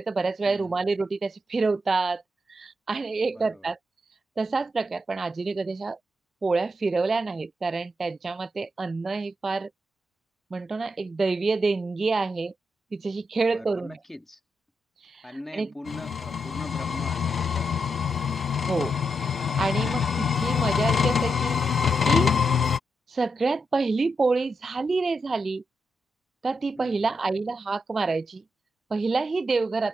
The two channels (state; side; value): normal; both; correlation 0.84